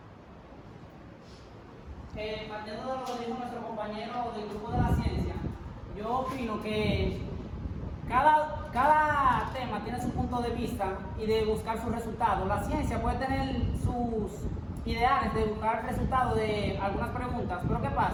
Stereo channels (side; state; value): both; identical; correlation 1.00